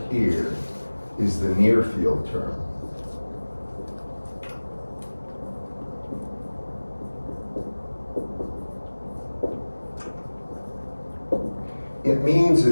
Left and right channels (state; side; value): inverted; both; correlation -1.00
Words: here is the near field term. It means